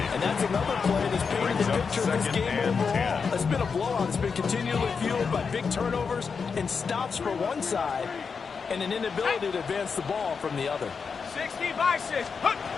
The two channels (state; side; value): quieter; right; 5.6 dB